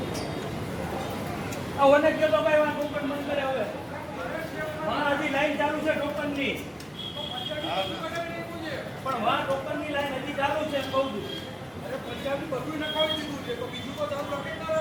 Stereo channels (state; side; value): identical; both; correlation 1.00